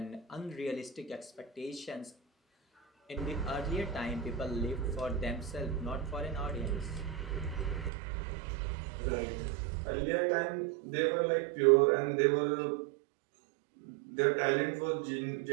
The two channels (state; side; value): drops out; left; at 7.9 s